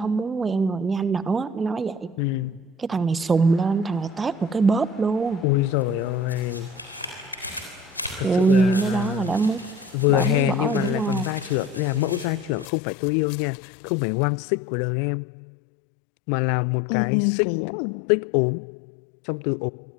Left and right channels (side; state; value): right; drops out; at 12.7 s